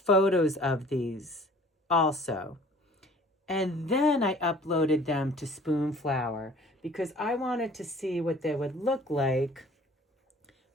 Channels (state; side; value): normal; both; correlation 0.51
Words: of these also. And then I uploaded them to Spoonflower because I wanted to see what they would look like